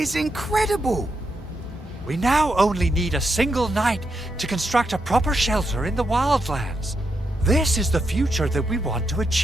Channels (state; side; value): normal; both; correlation 0.83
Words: incredible. We now only need a single night to construct a proper shelter in the wildlands. This is the future that we want to